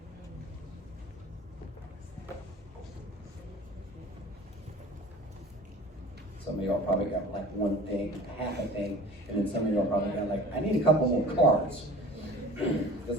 Some of y'all probably got like one thing, half a thing, and then some of y'all probably got like, I need a couple more cards because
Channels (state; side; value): normal; both; correlation 0.42